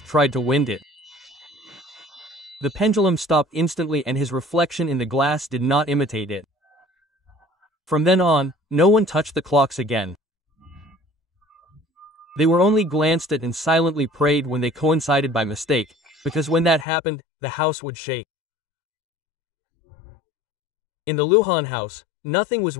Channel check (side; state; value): right; drops out; at 16.9 s